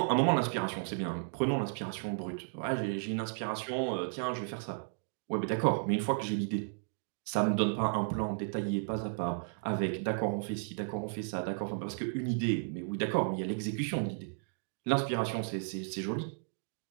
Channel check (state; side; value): silent; left; digital silence